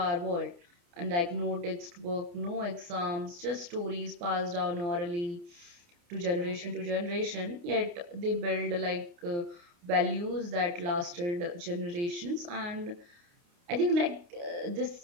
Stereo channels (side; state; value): left; late; 29 ms